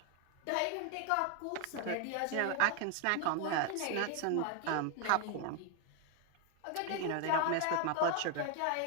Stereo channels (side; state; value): both; different; correlation 0.01